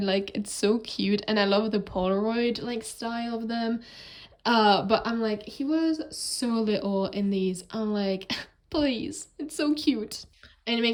like it's so cute, and I love the Polaroid like style of them. But I'm like, he was so little in these. I'm like, please, it's so cute. And it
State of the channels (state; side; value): identical; both; correlation 1.00